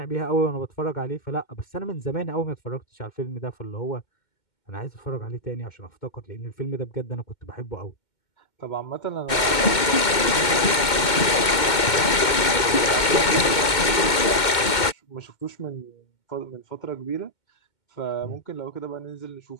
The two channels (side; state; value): right; late; 2.2 ms